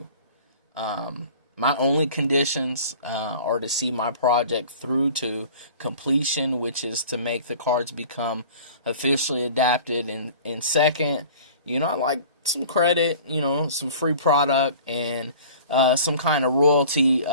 My only conditions are to see my project through to completion, which is to make the cards become officially adapted. And second, I like some credit, some free product, and some kind of royalty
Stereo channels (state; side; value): inverted; both; correlation -0.45